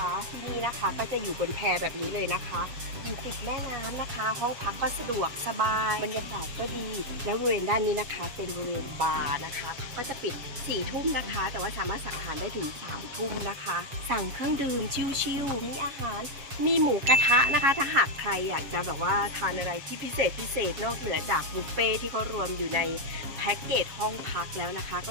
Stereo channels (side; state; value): left; late; 7.3 ms